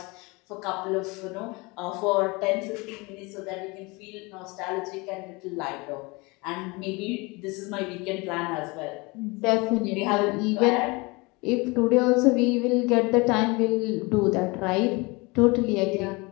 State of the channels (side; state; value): right; quieter; 25.9 dB